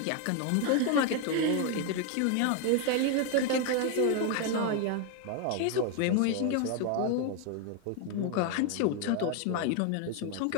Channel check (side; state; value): both; different; correlation 0.01